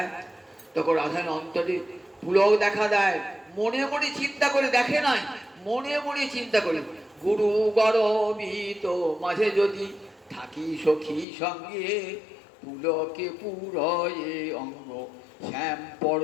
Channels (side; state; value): right; drops out; at 11.2 s